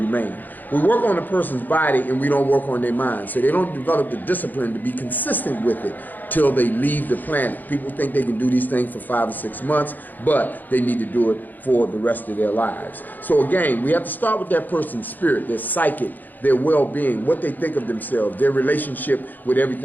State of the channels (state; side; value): late; right; 0.086 ms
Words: We work on a person's body and we don't work on their mind. So they don't develop the discipline to be consistent with it till they leave the planet. People think they can do these things for 5 or 6 months, but they need to do it for the rest of their lives. So again, we have to start with that person's spirit, their psychic, their well-being, what they think of themselves, their relationship with